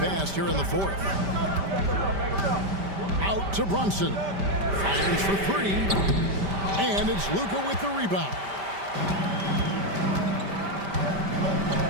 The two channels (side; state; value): left; late; 5.1 ms